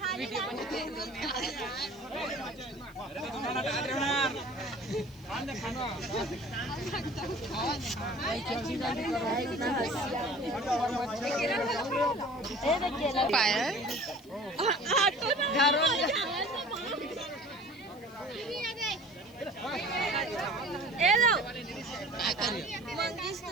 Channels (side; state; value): left; noise; hiss, 26 dB below the sound